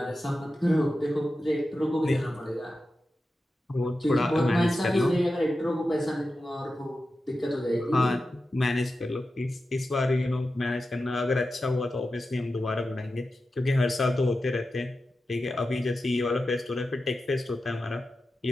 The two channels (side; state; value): both; normal; correlation 0.92